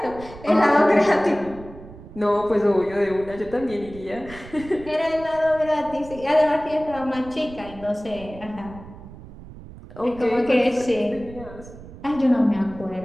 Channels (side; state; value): right; noise; rumble, 17 dB below the sound